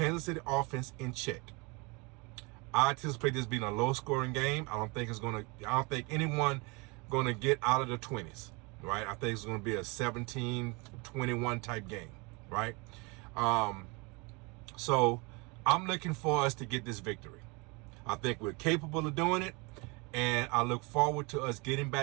City offense in check. I anticipate this being a low-scoring game. I don't think anyone going to get out of the 20s, right? I think it's going to be a 17-21 type game, right? So I'm looking for us to get this victory. I think we're capable of doing it, and I look forward to us getting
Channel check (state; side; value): quieter; left; 28.4 dB